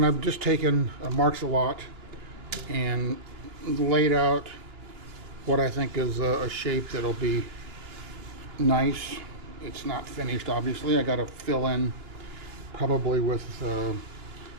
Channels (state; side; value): late; left; 3.0 ms